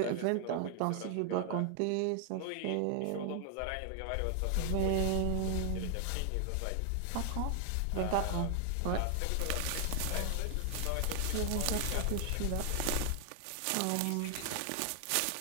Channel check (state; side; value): different; both; correlation 0.00